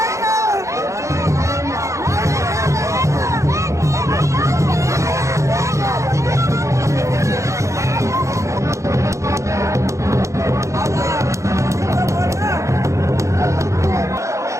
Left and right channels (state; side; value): late; left; 0.15 ms